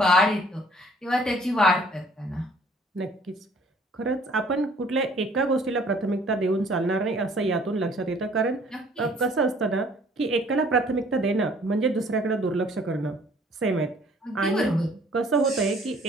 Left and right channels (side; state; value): both; normal; correlation 0.57